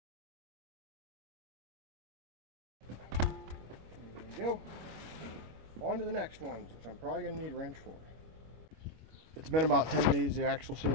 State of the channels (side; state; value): left; late; 25 ms